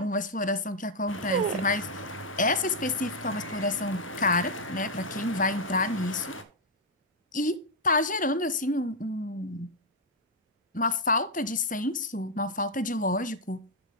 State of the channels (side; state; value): both; normal; correlation -0.02